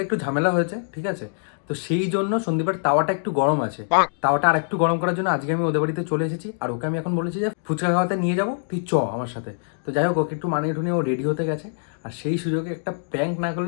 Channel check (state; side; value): silent; right; digital silence